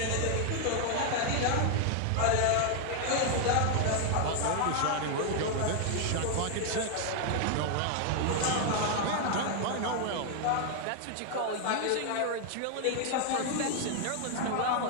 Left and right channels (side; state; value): both; different; correlation 0.00